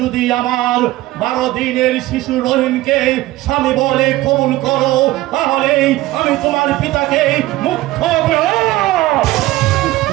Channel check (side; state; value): left; quieter; 17.4 dB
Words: আমার 12 দিনের শিশু রহিমকে স্বামী বলে কবুল করো, তাহলে আমি তোমার পিতাকে মুক্ত